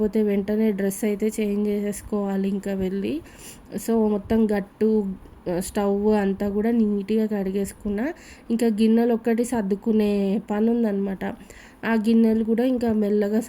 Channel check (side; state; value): both; identical; correlation 1.00